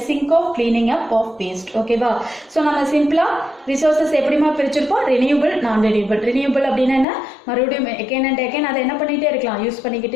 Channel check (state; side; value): drops out; right; at 7.1 s